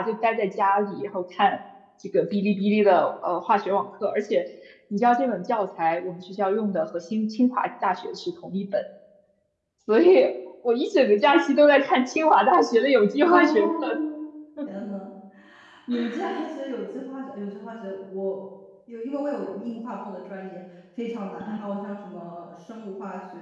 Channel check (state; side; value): identical; both; correlation 1.00